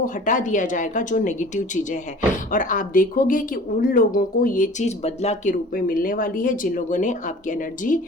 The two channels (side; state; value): both; normal; correlation 0.45